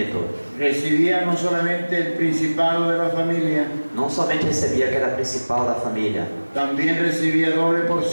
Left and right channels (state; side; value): inverted; both; correlation -1.00